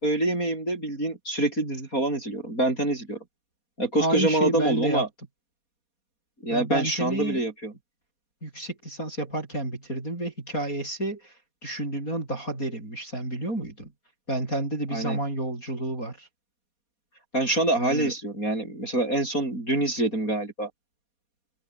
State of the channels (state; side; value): late; right; 4.2 ms